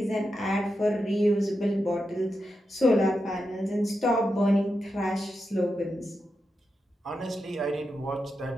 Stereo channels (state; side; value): normal; both; correlation 0.88